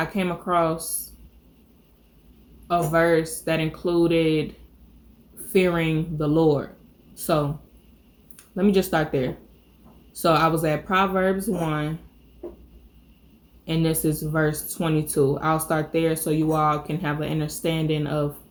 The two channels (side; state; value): both; identical; correlation 1.00